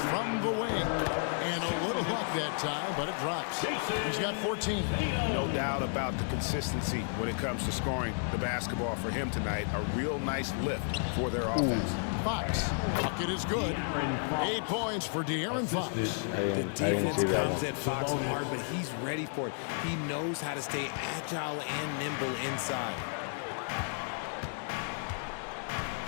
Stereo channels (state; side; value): silent; right; 56 dB below the other